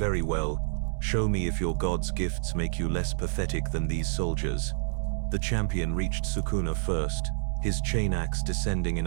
well. Show me if your god's gifts make you less pathetic than these soldiers." The champion reached Sukuna first, his chain axe descending in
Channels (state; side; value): silent; left; 59 dB below the other